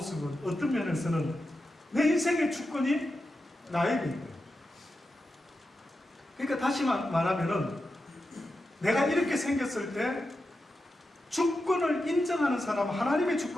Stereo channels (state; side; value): normal; both; correlation 0.89